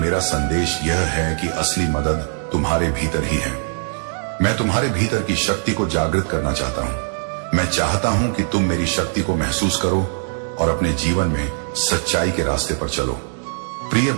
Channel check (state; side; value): silent; left; 61 dB below the other